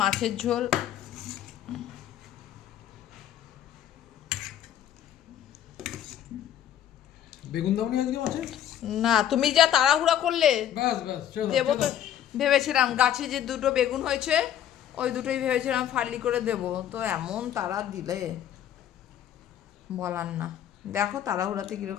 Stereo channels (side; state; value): right; quieter; 10.6 dB